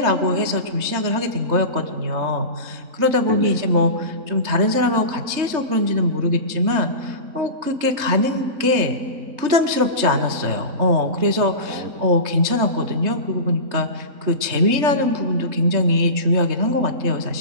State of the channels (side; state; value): left; late; 3.3 ms